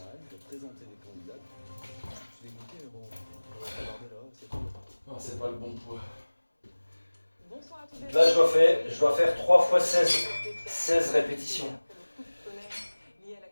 de présenter des candidats. Je suis dégoûté, mais bon, on va regarder là, c'est tout. Non, c'est pas le bon poids. Bonsoir à tous les Là, je dois faire 3 fois 16 répétitions. Lié à la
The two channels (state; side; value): inverted; both; correlation -1.00